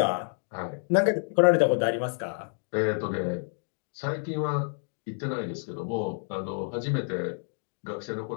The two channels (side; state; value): right; silent; 59 dB below the other